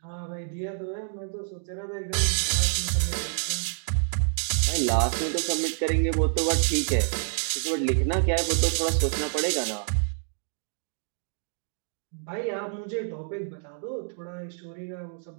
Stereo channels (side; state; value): left; silent; digital silence